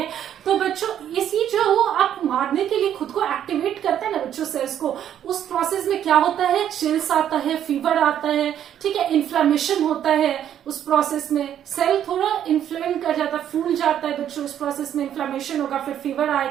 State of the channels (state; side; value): quieter; left; 10.1 dB